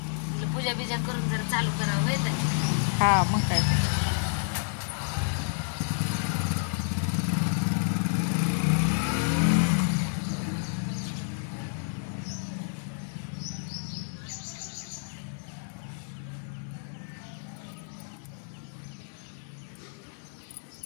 पूजा बिजा करून जरा चालू करावं येत. हा मग काय.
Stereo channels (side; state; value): right; silent; digital silence